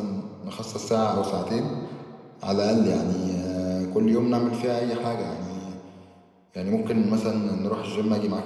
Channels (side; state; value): both; identical; correlation 1.00